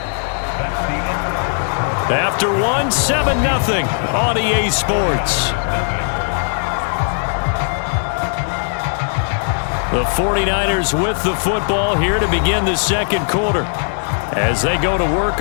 After one, 7-0 on EA Sports. The 49ers with the football here to begin the second quarter as they go to work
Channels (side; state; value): right; silent; 67 dB below the other